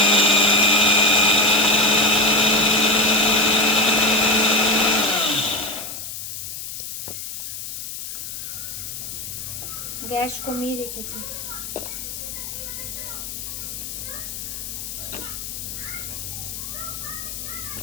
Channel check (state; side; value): noise; left; hiss, 8 dB below the sound